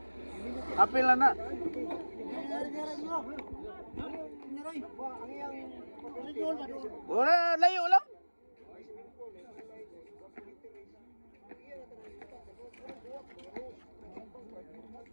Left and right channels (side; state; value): both; inverted; correlation -1.00